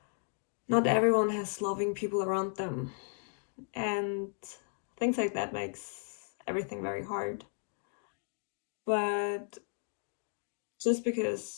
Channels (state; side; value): silent; right; 55 dB below the other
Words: Not everyone has loving people around them. And things like that makes everything very hard. But just